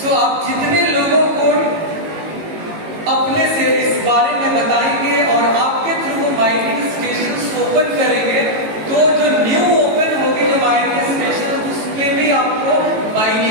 आप जितने लोगों को अपने से इस बारे में बताएंगे और आपके थ्रू माइनिंग स्टेशन ओपन करेंगे, तो जो न्यू ओपन होगी जो माइनिंग स्टेशन उसमें भी आपको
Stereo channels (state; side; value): late; left; 18 ms